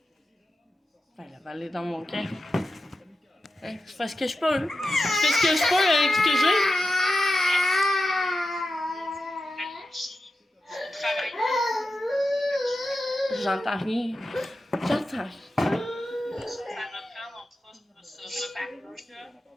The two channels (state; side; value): normal; both; correlation 0.92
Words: Ben, la balle est dans mon camp. Hein, je fais ce que je peux. Je fais ce que je peux avec ce que j'ai. J'entends rien. J'entends rien. Ça reprend, on fera ce repas-là.